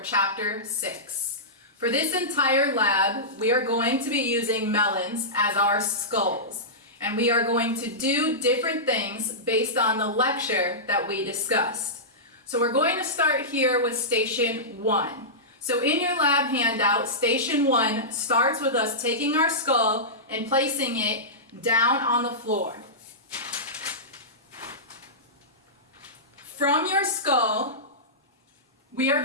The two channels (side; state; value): both; normal; correlation -0.15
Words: chapter 6. For this entire lab, we are going to be using melons as our skulls, and we are going to do different things based on the lecture that we discussed. So we're going to start here with station 1. So in your lab handout, station 1 starts with us taking our skull and placing it down on the floor. From your skull, we are